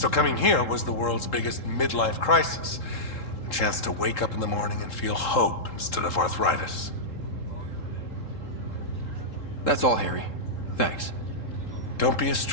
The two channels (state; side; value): late; right; 3.7 ms